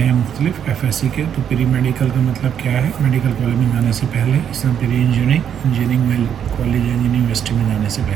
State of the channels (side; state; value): left; quieter; 8.7 dB